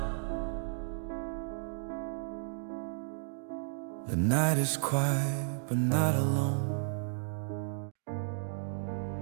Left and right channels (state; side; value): silent; left; digital silence